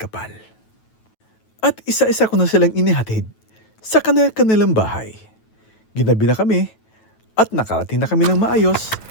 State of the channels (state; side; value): late; right; 9.2 ms